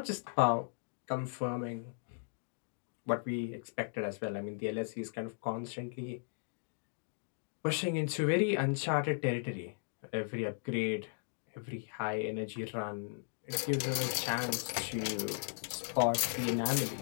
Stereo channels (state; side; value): silent; right; digital silence